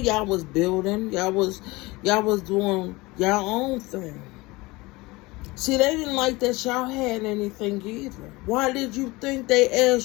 was building. Y'all was doing y'all own thing. See, they didn't like that y'all had anything either. Why did you think they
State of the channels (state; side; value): quieter; right; 22.4 dB